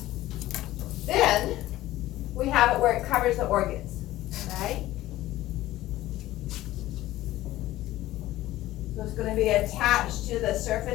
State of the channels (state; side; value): quieter; right; 15.7 dB